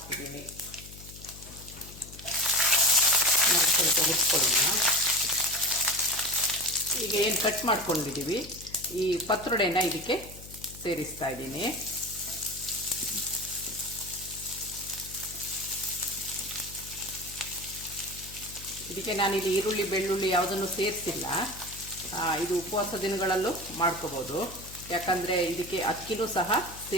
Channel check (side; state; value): left; noise; hum, 16 dB below the sound